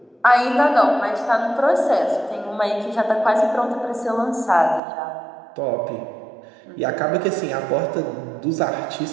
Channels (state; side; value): drops out; left; at 4.8 s